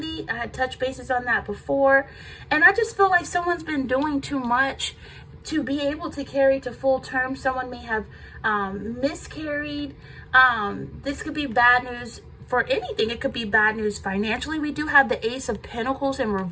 I had touched bases on that before, and I just feel like someone's been doing too much to be able to carry to full term. Someone may have miscarried. This could be bad news for anything. It could be bad news financially. We do have the Ace of Pentacles in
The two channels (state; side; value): identical; both; correlation 1.00